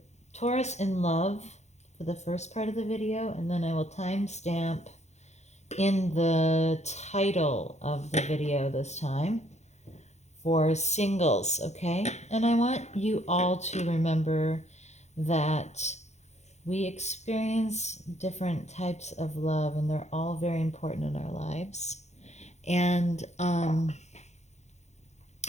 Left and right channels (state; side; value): late; right; 0.33 ms